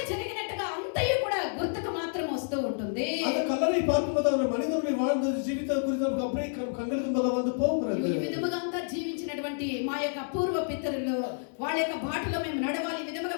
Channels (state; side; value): silent; right; 58 dB below the other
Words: జరిగినట్టుగా అంతయు కూడా గుర్తుకు మాత్రం వస్తూ ఉంటుంది. அந்த கல்லறை பார்க்கும்போது அந்த மனிதனுடைய வாழ்ந்த జీవితం குறித்து நமக்கு அப்படியே கண்களுக்கு முன்னால் வந்து போகிறது. ఈ విధముగా అంతా జీవించినటువంటి మా యొక్క పూర్వ పితరులు వాళ్ళ యొక్క బాటలో మేము నడవాలి, ఈ విధముగా